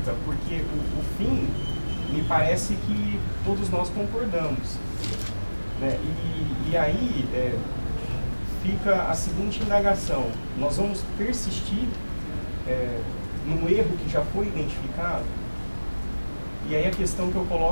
porque o fim, me parece que todos nós concordamos, né? E aí fica a seguinte indagação: nós vamos persistir num erro que já foi identificado? E aí a questão que eu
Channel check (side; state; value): both; inverted; correlation -1.00